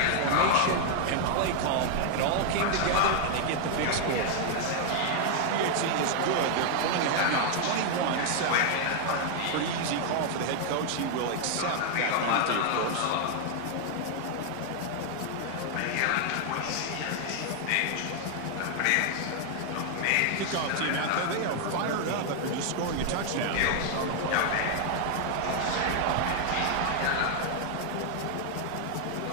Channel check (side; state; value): both; different; correlation 0.00